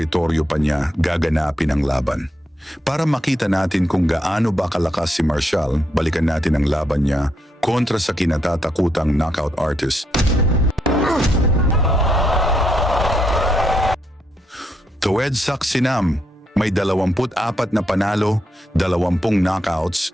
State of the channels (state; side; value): normal; both; correlation 0.78